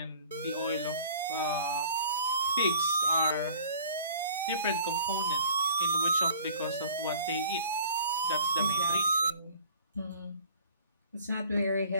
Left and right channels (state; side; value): inverted; both; correlation -0.49